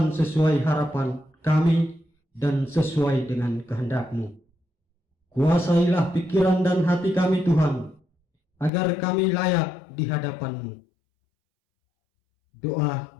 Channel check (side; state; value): right; drops out; at 8.7 s